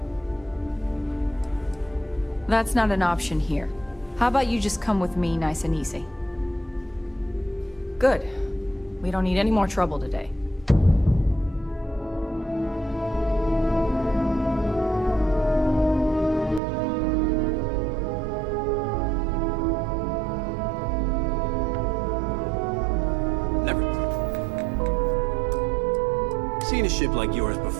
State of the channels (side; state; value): left; drops out; at 16.6 s